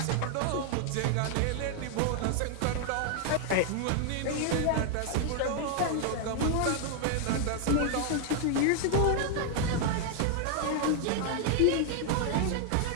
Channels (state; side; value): different; both; correlation 0.00